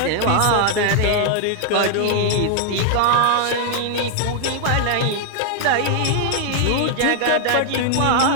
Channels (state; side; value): different; both; correlation 0.00